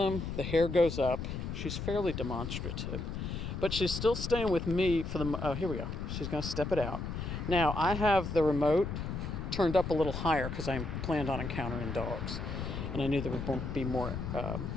The hair goes up. She's fairly demonstrative, but she's still staying with me for the, here we go. She's going to step it out. Now, I have the remote turned up a little higher because I planned on encountering dogs, and I knew there would be more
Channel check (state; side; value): noise; left; rumble, 5 dB below the sound